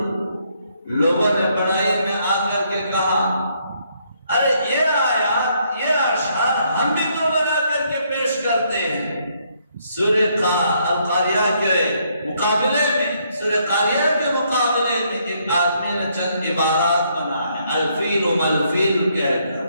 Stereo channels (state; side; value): inverted; both; correlation -0.71